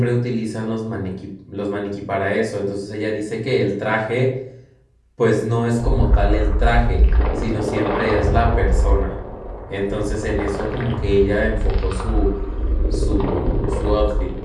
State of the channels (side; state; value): both; identical; correlation 1.00